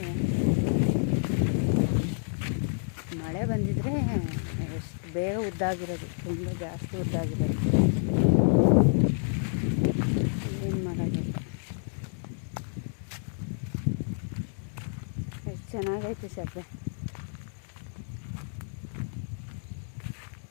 ಮಳೆ ಬಂದಿದ್ರೆ ಎಷ್ಟು ಬೇಗ ಉದ್ದಾಗಿರೋದು, ತುಂಬ ಜಾಸ್ತಿ ಉದ್ದಾಗಿರೋದು. ಏನು ಮಾಡೋದಿಲ್ಲ. ಎಷ್ಟು ಚೆನ್ನಾಗೈತೆ ಸಬ್ಬೆ.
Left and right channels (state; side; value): silent; right; digital silence